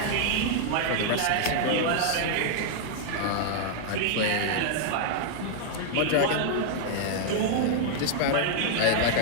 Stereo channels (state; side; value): different; both; correlation -0.01